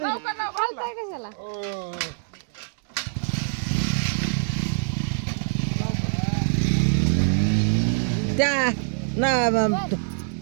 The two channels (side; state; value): left; silent; digital silence